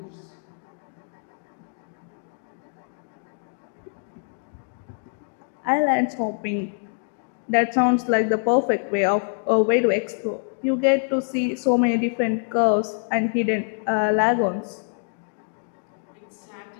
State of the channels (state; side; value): silent; right; 57 dB below the other